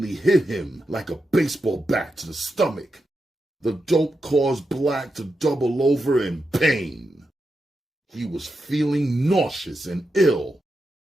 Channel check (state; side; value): normal; both; correlation 0.87